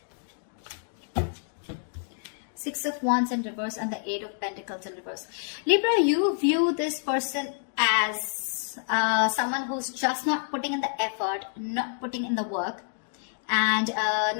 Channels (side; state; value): right; silent; digital silence